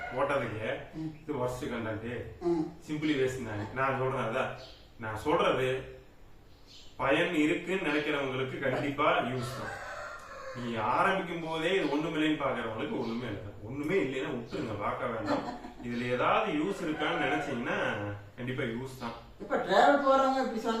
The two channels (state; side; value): identical; both; correlation 1.00